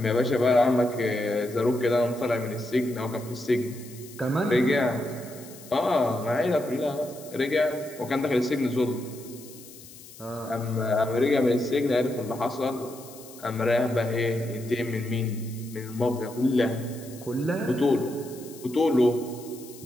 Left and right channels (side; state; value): left; noise; hiss, 19 dB below the sound